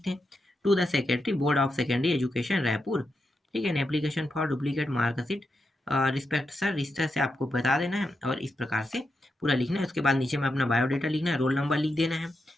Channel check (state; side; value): normal; both; correlation 0.86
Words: हैं, to the secretary board of secondary education Raipur. ठीक है, application for duplicate marksheet respect sir, इस तरह से आपको बता देना है और इस प्रकार से पूरा लिखना है। उसके बाद नीचे में अपना बायोडाटा लिखना है, रोल नंबर लिख देना है,